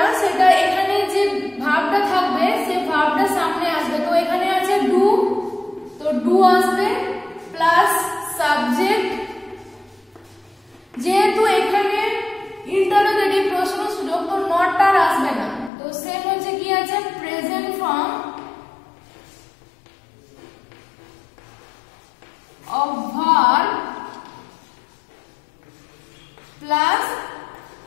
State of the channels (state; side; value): drops out; right; at 15.7 s